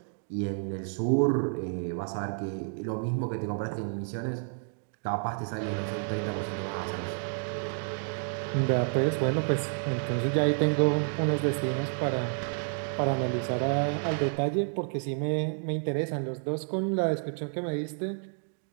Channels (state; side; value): silent; left; 58 dB below the other